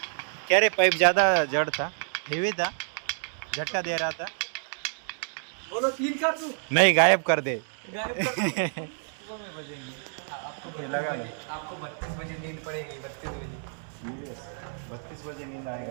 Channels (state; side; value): silent; left; 59 dB below the other